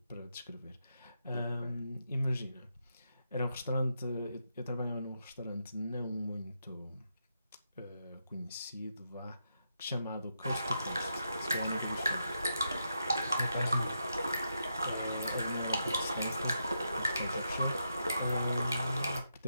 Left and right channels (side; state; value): both; inverted; correlation -0.83